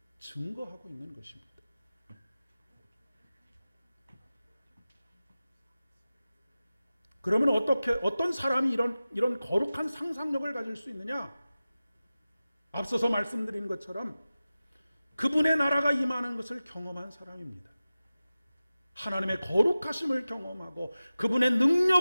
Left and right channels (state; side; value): inverted; both; correlation -0.95